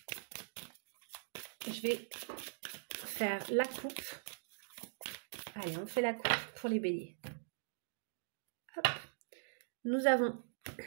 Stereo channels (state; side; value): silent; left; digital silence